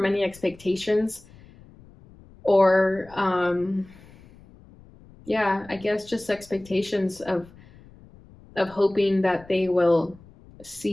any expectations, or yeah, I guess just expectations of hoping that they will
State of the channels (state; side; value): noise; left; rumble, 24 dB below the sound